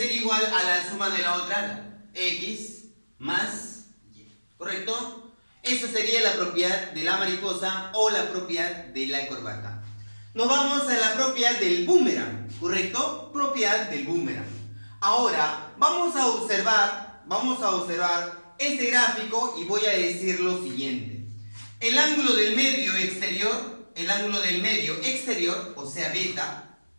igual a la suma de la otra ala, x más y. ¿Correcto? Esa sería la propiedad de la mariposa o la propiedad de la corbata. Nos vamos a la propiedad del boomerang, ¿correcto? Propiedad del boomerang. Ahora, vamos a observar este gráfico y voy a decir lo siguiente. El ángulo del medio exterior, o sea beta,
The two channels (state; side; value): inverted; both; correlation -1.00